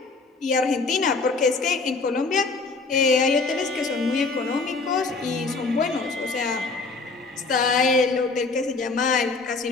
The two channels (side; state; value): right; quieter; 3.9 dB